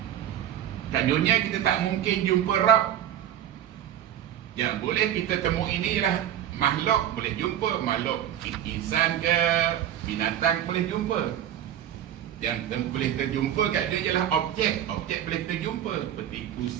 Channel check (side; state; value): left; quieter; 10.8 dB